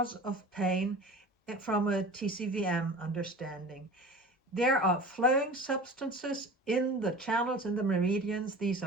of pain from a TCVM understanding. There are flowing substances in the channels, in the meridians. These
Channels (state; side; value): normal; both; correlation 0.37